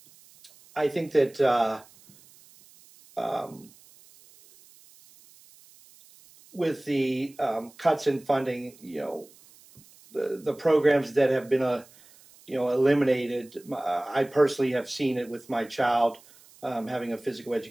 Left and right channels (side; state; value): right; noise; hiss, 26 dB below the sound